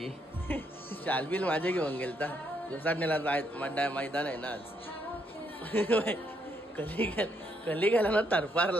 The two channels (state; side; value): normal; both; correlation 0.74